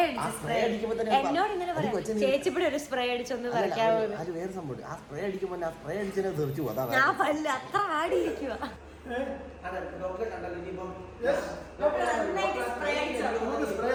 എന്നോട് ഇങ്ങനെ പറയാം, ചേച്ചിപ്പിടെ ഒരു സ്പ്രേ അടിച്ചൊന്ന് പറിക്കാവോ? ഞാൻ പല്ല് അത്ര ആടിയിരിക്കുക.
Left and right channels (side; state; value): both; identical; correlation 1.00